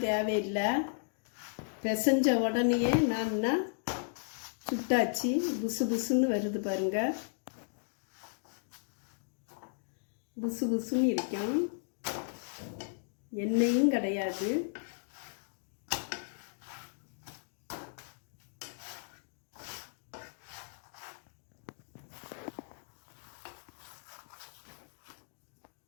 தேவையில்லை. பிசைஞ்ச உடனே நான் சுட்டாச்சு. புசு புசுன்னு வருது பாருங்க. புசு புசுன்னு இருக்கும். எண்ணெயும் கிடையாது.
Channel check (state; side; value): silent; right; digital silence